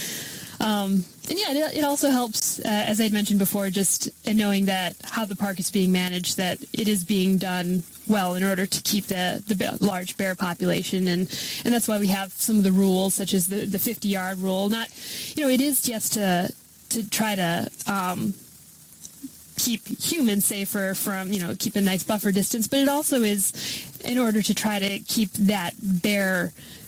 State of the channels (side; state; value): both; identical; correlation 1.00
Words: it also helps, as I'd mentioned before, just in knowing that how the park is being managed, that it is being done well in order to keep the large bear population, and that's why we have some of the rules, such as the 50-yard rule. Not, it is just to try to keep humans safer from, keep a nice buffer distance, but it also is in order to try to keep that bear